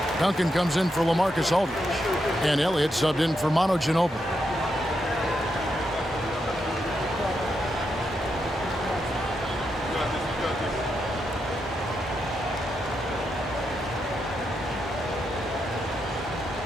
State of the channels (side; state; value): both; normal; correlation 0.83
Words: Duncan comes in for LaMarcus Aldridge. And Elliott subbed in for Manu Ginobili.